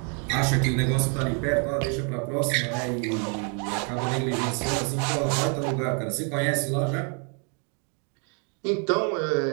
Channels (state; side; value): quieter; left; 38.2 dB